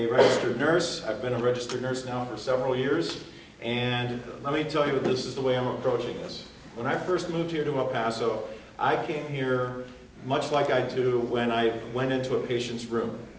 registered nurse. I've been a registered nurse now for several years, and let me tell you, this is the way I'm approaching this. When I first moved here to El Paso, I came here much like I do when I went into a patient's room,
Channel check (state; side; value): identical; both; correlation 1.00